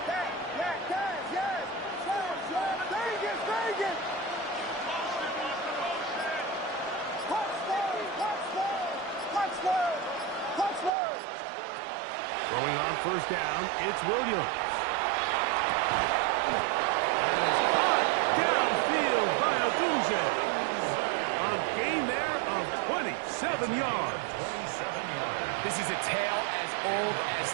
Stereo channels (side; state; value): left; drops out; at 10.9 s